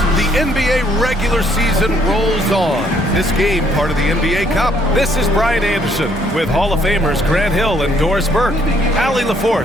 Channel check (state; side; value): normal; both; correlation 0.67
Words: The NBA regular season rolls on. This game, part of the NBA Cup. This is Brian Anderson with Hall of Famers Grant Hill and Doris Burke. Allie